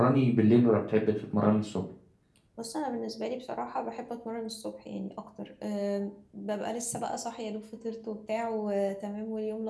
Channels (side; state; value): both; identical; correlation 1.00